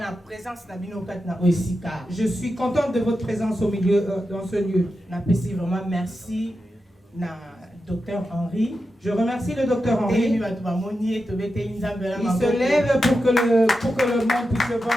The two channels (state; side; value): normal; both; correlation 0.89